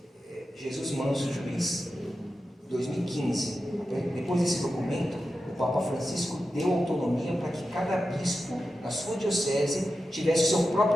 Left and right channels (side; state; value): both; normal; correlation 0.91